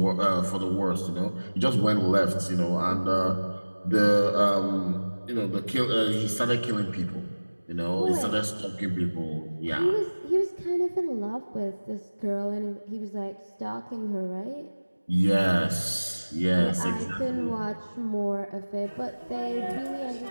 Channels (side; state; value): both; inverted; correlation -1.00